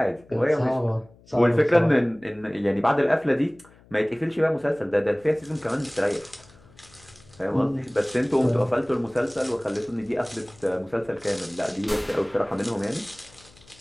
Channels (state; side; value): noise; left; hum, 27 dB below the sound